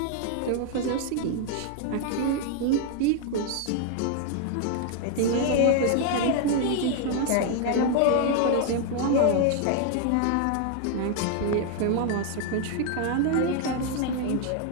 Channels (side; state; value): both; different; correlation 0.00